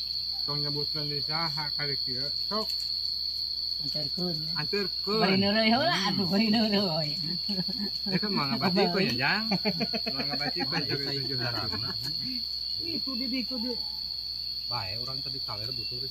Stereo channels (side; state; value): right; noise; hum, 19 dB below the sound